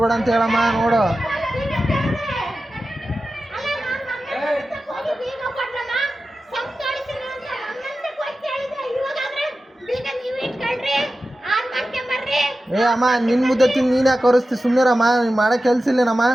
ಅಂತ ಹೇಳಮ್ಮ ನೋಡು ಅಮ್ಮ ನಿನ್ ಮುದ್ದೆ ತಿಂದು ನೀನ್ ಯಾಕೆ ಕರೆಸ್ತಿ ಸುಮ್ಮನಿರಮ್ಮ ಮಾಡಕ್ ಕೆಲ್ಸ ಇಲ್ಲೇನಮ್ಮ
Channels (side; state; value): both; normal; correlation 0.93